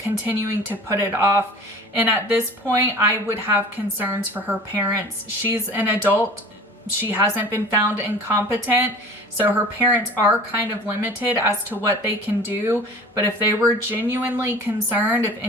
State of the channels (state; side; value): normal; both; correlation 0.42